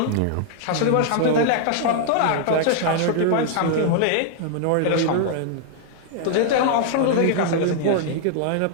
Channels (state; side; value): different; both; correlation -0.01